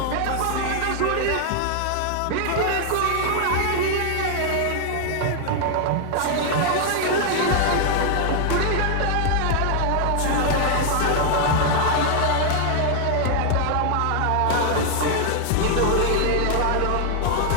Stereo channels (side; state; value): both; different; correlation 0.00